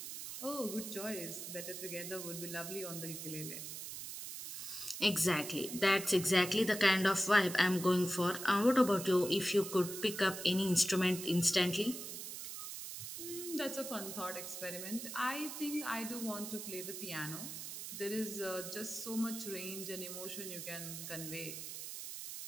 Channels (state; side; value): noise; right; hiss, 8 dB below the sound